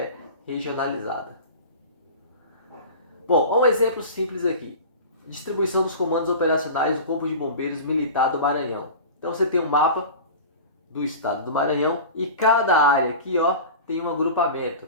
regionalizada. Bom, um exemplo simples aqui. Distribuição dos comandos operacionais do Corpo de Bombeiros Militar do Maranhão. Então você tem um mapa do estado do Maranhão e cada área aqui tem um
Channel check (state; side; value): inverted; both; correlation -0.34